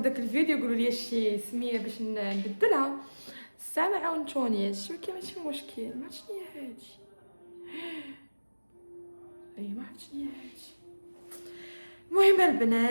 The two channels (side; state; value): both; inverted; correlation -1.00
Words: الفيديو قولوا لي شي سميه باش نبدلها. الساعه ما عاونتونيش، ولكن ماشي مشكل. ما عرفتش شنو هي هادي. اي ما عرفتش شنو هي هادي. المهم